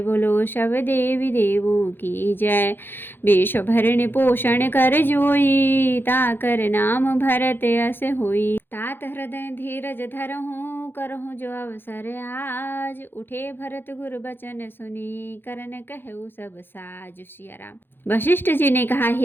बोलो सब देवी देवों की जय। विश्व भरण पोषण कर जोई, ताकर नाम भरत यस होई। तात हृदय धीरज धरहूँ, करहूँ जो अवसर आज। उठे भरत गुर बचन सुनी, करन कहु सब साज। सिया राम। वशिष्ठ जी ने कहा,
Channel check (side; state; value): right; late; 0.10 ms